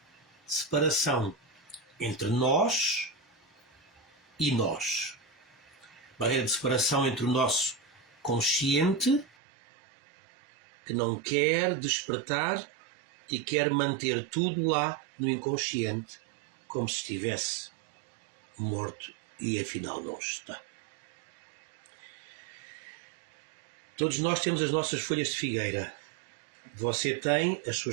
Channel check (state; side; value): drops out; left; at 9.3 s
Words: de separação entre nós e nós. Barreira de separação entre o nosso consciente, que não quer despertar e quer manter tudo lá no inconsciente, como se estivesse morto e afinal não está. Todos nós temos as nossas folhas de figueira. Você tem as